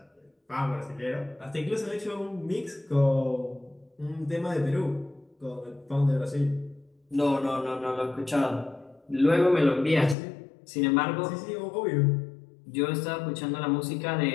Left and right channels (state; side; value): drops out; right; at 10.2 s